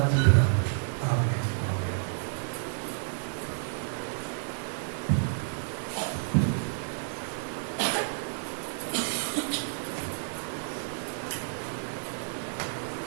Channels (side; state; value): left; silent; digital silence